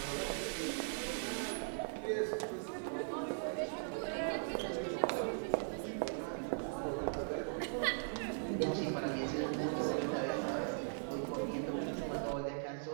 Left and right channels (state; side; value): silent; left; 52 dB below the other